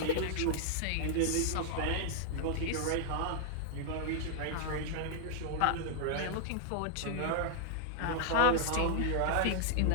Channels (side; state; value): both; different; correlation 0.00